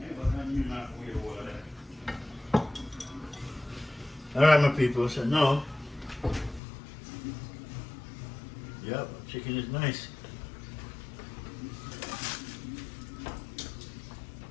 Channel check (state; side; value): drops out; right; at 6.6 s